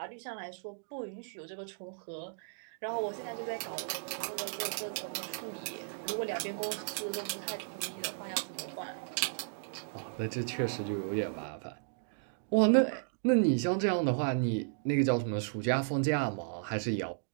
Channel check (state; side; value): silent; left; digital silence